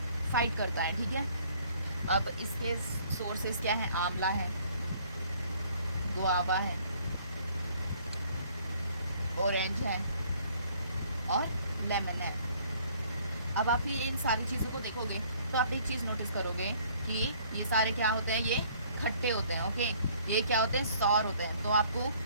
फाइट करता है, ठीक है। अब इसके सोर्सेज क्या हैं? आंवला है, गुआवा है, ऑरेंज है और लेमन है। अब आप ये इन सारी चीज़ों को देखोगे तो आप एक चीज़ नोटिस करोगे कि ये सारे क्या होते हैं? ये खट्टे होते हैं। ओके, ये क्या होते हैं? सौर होते हैं। तो आपको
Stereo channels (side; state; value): both; inverted; correlation -0.59